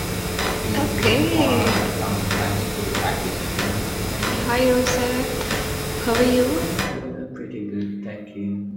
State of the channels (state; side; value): identical; both; correlation 1.00